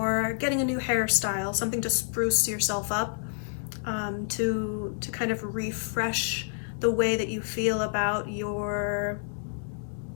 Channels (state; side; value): silent; right; digital silence